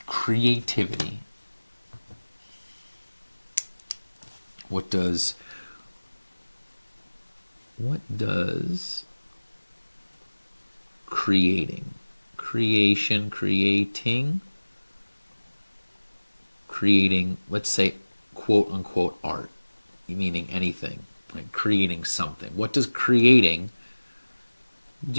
creativity, what does creating, creating, let's say, quote unquote art, meaning anything, like creating something. What does creating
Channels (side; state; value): both; inverted; correlation -1.00